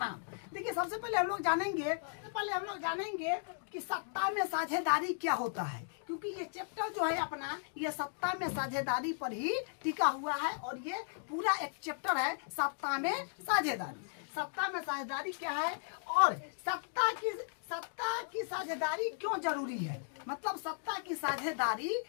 देखिए, सबसे पहले हम लोग जानेंगे कि सत्ता में साझेदारी क्या होता है, क्योंकि ये चैप्टर जो है अपना ये सत्ता में साझेदारी पर ही टिका हुआ है और ये पूरा एक चैप्टर है सत्ता में साझेदारी। सत्ता में साझेदारी क्या है और सत्ता की साझेदारी क्यों जरूरी है, मतलब सत्ता की साझेदारी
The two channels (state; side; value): silent; right; digital silence